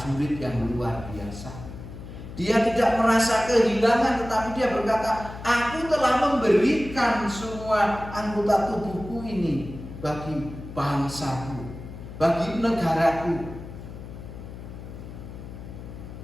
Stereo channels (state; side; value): noise; left; hum, 12 dB below the sound